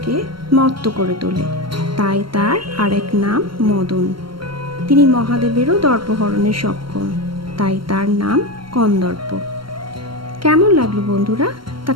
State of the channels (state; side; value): late; left; 0.73 ms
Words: মত্ত করে তোলে, তাই তার আরেক নাম মদন। তিনি মহাদেবেরও দর্পহরণে সক্ষম, তাই তার নাম কন্দর্প। কেমন লাগলো বন্ধুরা, তা